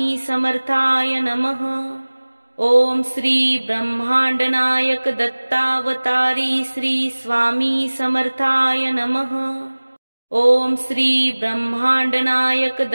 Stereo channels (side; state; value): both; inverted; correlation -1.00